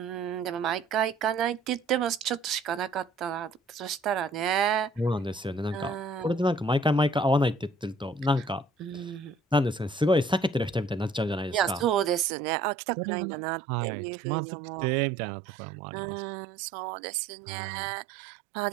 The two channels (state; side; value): drops out; left; at 12.2 s